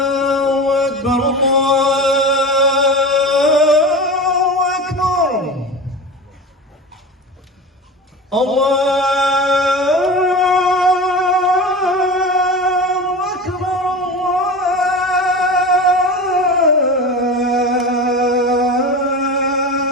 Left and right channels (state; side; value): normal; both; correlation 0.30